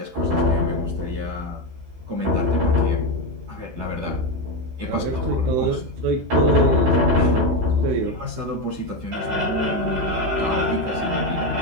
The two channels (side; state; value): left; late; 16 ms